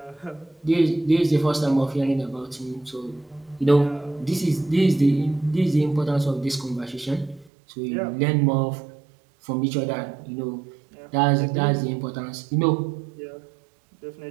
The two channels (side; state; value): left; drops out; at 7.5 s